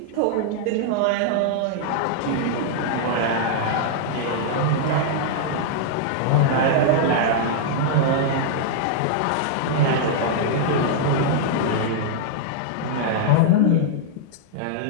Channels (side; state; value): both; different; correlation -0.01